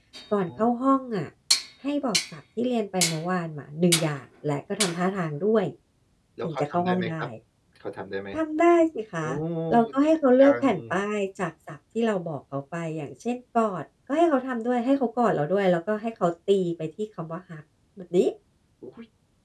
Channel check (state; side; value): identical; both; correlation 1.00